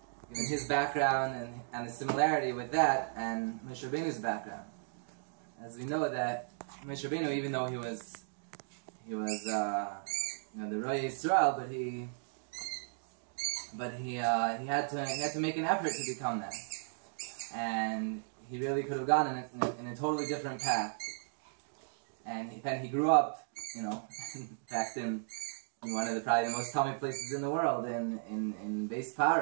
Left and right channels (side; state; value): left; silent; digital silence